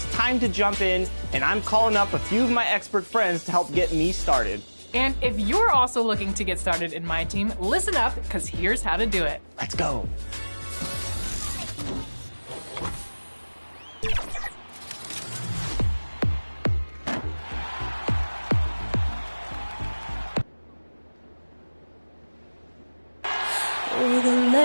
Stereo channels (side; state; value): both; inverted; correlation -1.00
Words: time to jump in, and I'm calling up a few of my expert friends to help get me started. And if you're also looking to get started in my team, listen up, because here's how to do it. Let's go. For the